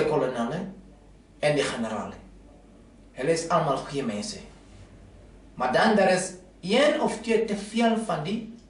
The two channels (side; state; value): both; identical; correlation 1.00